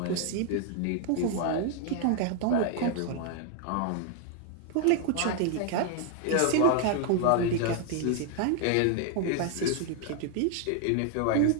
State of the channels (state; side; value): different; both; correlation 0.00